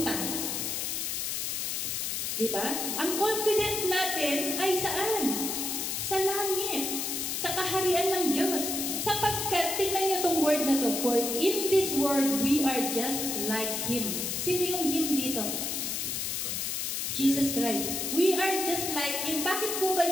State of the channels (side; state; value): left; noise; hiss, 1 dB below the sound